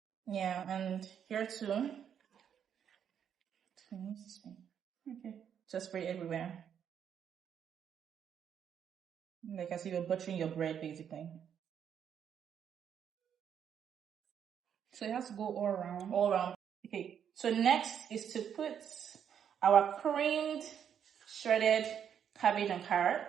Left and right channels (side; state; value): left; quieter; 8.5 dB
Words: Yeah, and here too. Okay. Just spread it everywhere. Like as if you're buttering your bread, basically. So it has to go all around? All around. Okay, so next is to put our creamed, shredded cabbage and